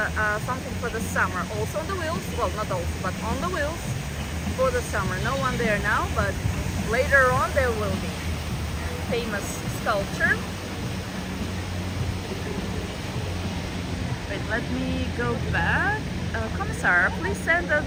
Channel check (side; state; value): both; identical; correlation 1.00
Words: something for the summer. Also on the wheels, well not also, but on the wheels for the summer. No one there now, but later on there will be. Famous sculpture. Wait, let me go back. Commissar, please send